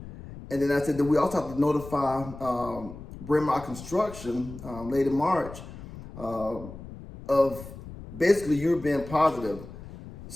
And then I said that we also have to notify Brand My Construction late in March of basically you being positive.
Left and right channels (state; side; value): noise; left; rumble, 14 dB below the sound